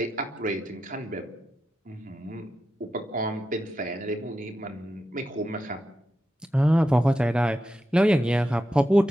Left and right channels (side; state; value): both; normal; correlation 0.88